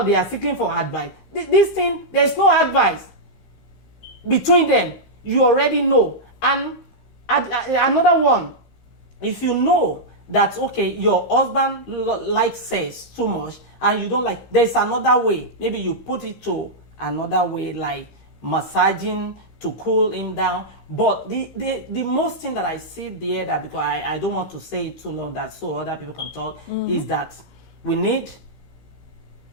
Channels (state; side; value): late; right; 15 ms